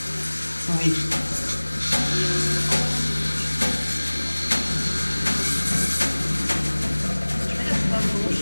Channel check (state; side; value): inverted; both; correlation -1.00